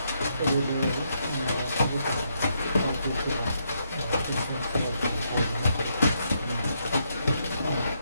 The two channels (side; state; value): both; inverted; correlation -0.77